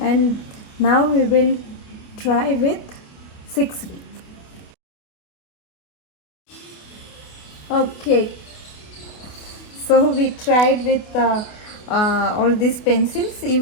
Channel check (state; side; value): late; right; 28 ms